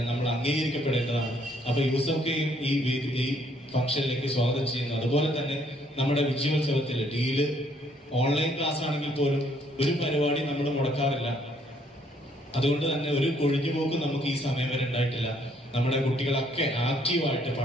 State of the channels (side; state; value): both; normal; correlation 0.66